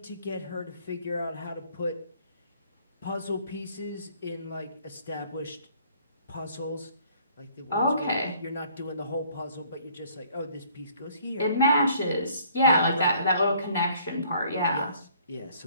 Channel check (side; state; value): both; inverted; correlation -0.59